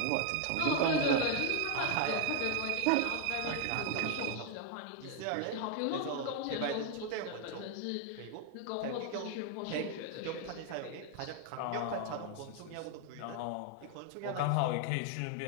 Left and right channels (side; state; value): both; different; correlation 0.00